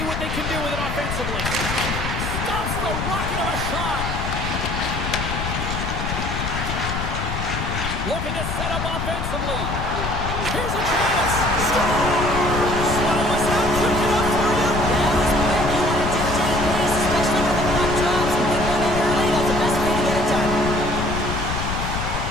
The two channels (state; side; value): noise; left; rumble, 4 dB below the sound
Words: what they can do with it offensively. Stops the rocket of a shot. Looking to set up offensively. Here's a chance. Scores! Well, was that quick enough for you? That was quick. You want to dictate pace, especially when the puck drops and get one in early. That's the best way to get it done.